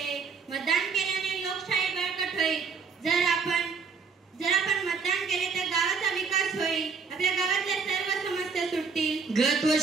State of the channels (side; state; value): left; quieter; 5.3 dB